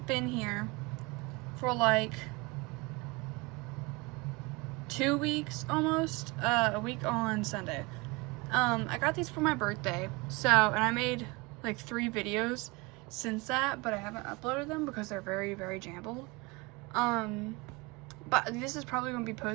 been here for like 2 weeks almost, a week on Sunday. I got these for my birthday, and I made like 3 videos since that, but I haven't uploaded them because they're very, very jumbled. But this is probably going to be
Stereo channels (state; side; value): quieter; left; 25.6 dB